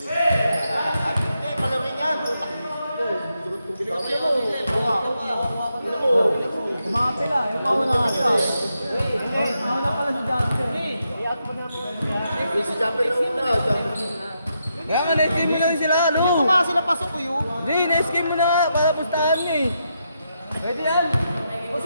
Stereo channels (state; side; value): inverted; both; correlation -0.83